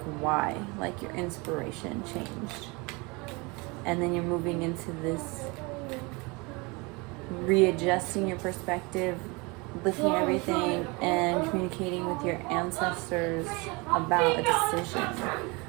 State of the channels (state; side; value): quieter; left; 27.2 dB